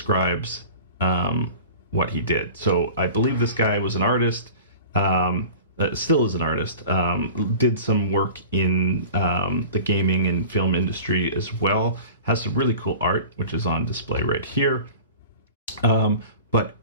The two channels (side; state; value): both; inverted; correlation -0.38